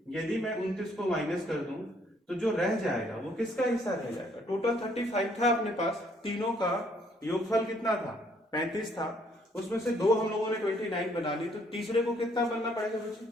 यदि मैं 29 को माइनस कर दूं तो जो रह जाएगा वो किसका हिस्सा रह जाएगा? टोटल 35 था अपने पास, तीनों का योगफल कितना था? 35 था। उसमें से दो हम लोगों ने 29 बना ली, तो तीसरे को कितना बनना पड़ेगा बच्चे?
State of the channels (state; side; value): normal; both; correlation 0.66